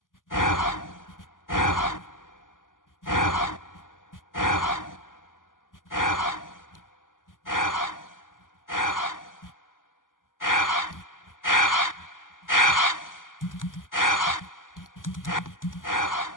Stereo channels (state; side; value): late; right; 0.88 ms